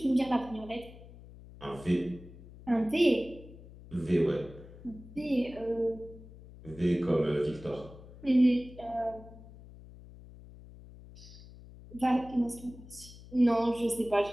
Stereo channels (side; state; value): left; noise; hum, 18 dB below the sound